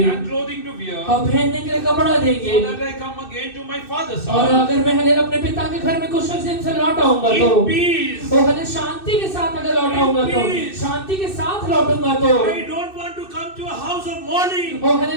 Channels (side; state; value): right; late; 2.6 ms